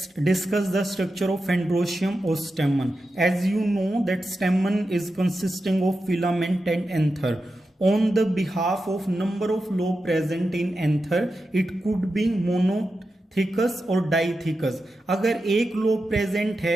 discuss the structure of Androecium or stamen. As you know that stamen is consisting of filament and anther. On the behalf of number of lobe present in anther, it could be monothecous और डाइथिकस. अगर एक लोब प्रेजेंट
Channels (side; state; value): both; normal; correlation 0.90